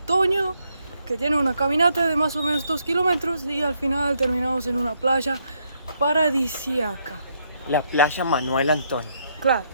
que tiene una caminata de más o menos 2 kilómetros y al final terminamos en una playa paradisíaca. La playa Manuel Antonio. Claro,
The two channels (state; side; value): inverted; both; correlation -0.74